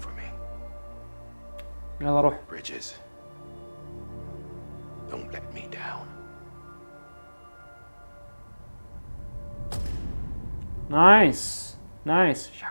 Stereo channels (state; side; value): inverted; both; correlation -1.00